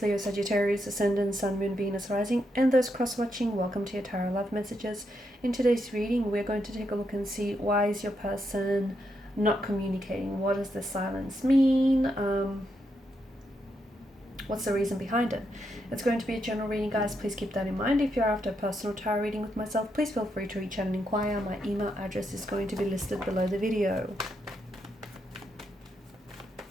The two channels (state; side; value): normal; both; correlation 0.81